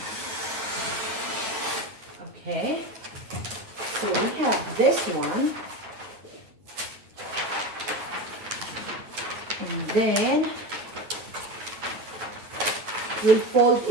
Okay, so we have this one, and then we'll fold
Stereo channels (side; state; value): left; late; 8.9 ms